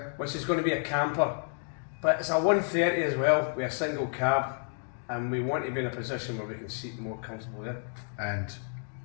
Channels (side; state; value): right; silent; 58 dB below the other